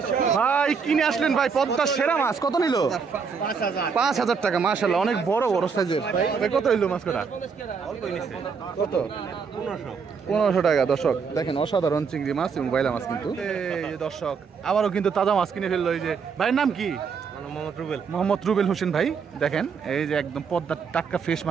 ভাই কিনে আসলেন ভাই পদ্মার সেরা মাছ কত নিল ৫,০০০ টাকা মাশাআল্লাহ অনেক বড় বড় সাইজের ভাই কত হইলো মাছ কটা কত ১৫০০ টাকা দর্শক দেখেন অসাধারণ চিংড়ি মাছ এবং বাইলা মাছ কিন্তু এই যে দর্শক আবারও কিন্তু তাজা মাছ কিনে ফেললো এই যে ভাইয়ের নাম কি মোহাম্মদ রুবেল হোসেন ভাই দেখেন এই যে একদম পদ্মার টাটকা ফ্রেশ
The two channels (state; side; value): quieter; left; 5.8 dB